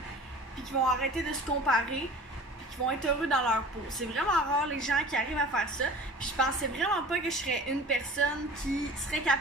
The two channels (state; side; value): normal; both; correlation 0.42